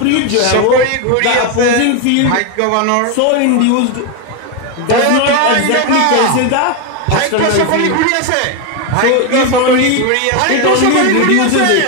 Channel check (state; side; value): different; both; correlation 0.02